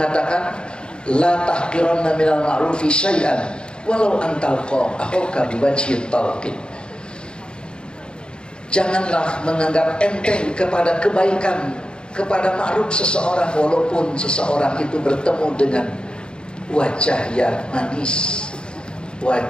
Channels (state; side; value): late; right; 0.051 ms